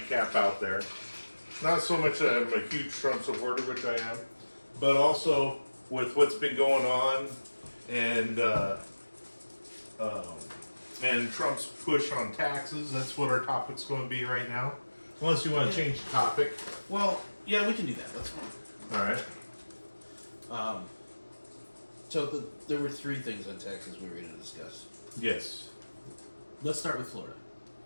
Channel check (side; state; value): both; inverted; correlation -1.00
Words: out there. Not so much that I'm a huge Trump supporter, which I am, but also with what's been going on and Trump's push on taxes. That's what our topic's going to be right now. Unless you want to change the topic. Well, yeah, we can do that. That's fine. All right. So there were three things on taxes we were going to discuss. Yes. Let's start with Florida.